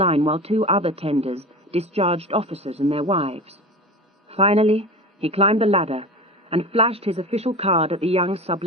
while 2 other tenders discharged officers and their wives. Finally, he climbed the ladder and flashed his official card at the young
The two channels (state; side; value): normal; both; correlation 0.30